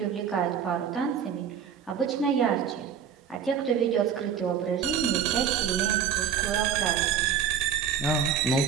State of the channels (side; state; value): left; quieter; 7.9 dB